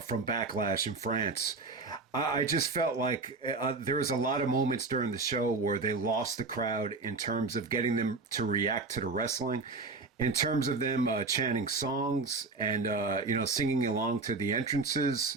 Backlash in France, I just felt like there was a lot of moments during the show where they lost the crowd in terms of getting them to react to the wrestling. In terms of them chanting songs and, singing along to the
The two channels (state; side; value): quieter; left; 3.9 dB